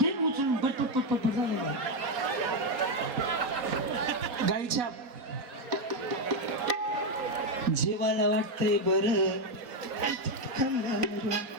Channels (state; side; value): late; left; 4.1 ms